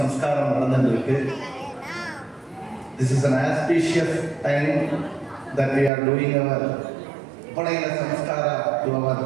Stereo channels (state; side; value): drops out; left; at 5.9 s